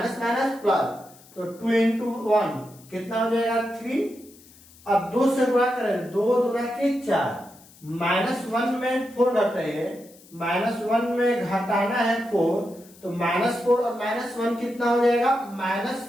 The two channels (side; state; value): left; noise; hiss, 24 dB below the sound